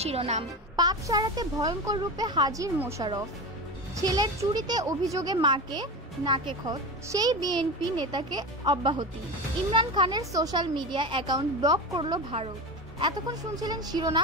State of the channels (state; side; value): normal; both; correlation 0.24